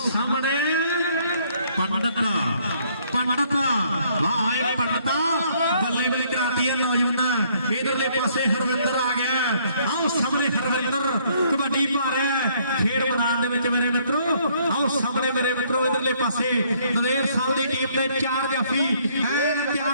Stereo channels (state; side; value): inverted; both; correlation -0.65